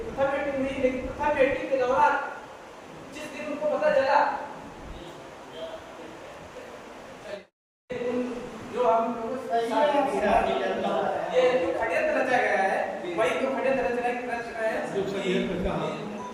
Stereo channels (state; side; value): identical; both; correlation 1.00